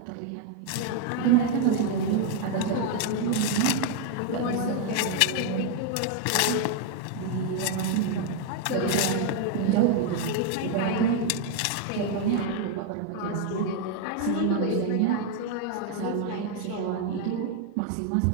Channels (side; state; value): both; different; correlation 0.01